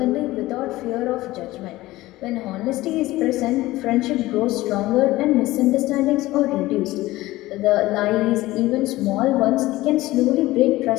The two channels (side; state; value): right; quieter; 17.8 dB